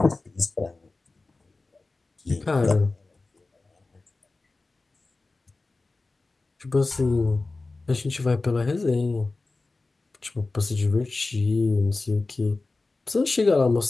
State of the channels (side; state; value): right; quieter; 3.4 dB